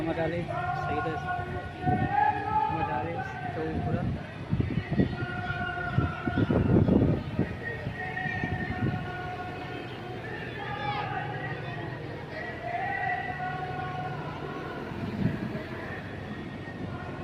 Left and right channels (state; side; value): identical; both; correlation 1.00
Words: मजाले सही मजाले तो पूरा